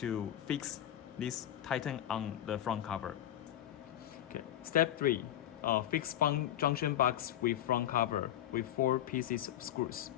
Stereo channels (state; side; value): quieter; right; 11.9 dB